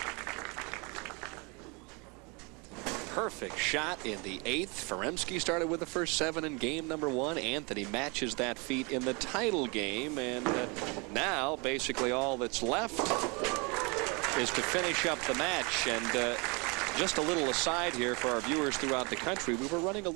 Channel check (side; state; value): left; quieter; 30.1 dB